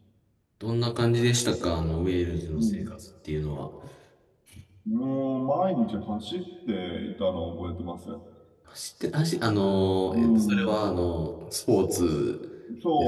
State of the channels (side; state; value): both; identical; correlation 1.00